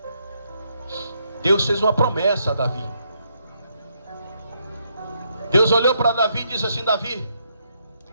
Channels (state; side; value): inverted; both; correlation -0.76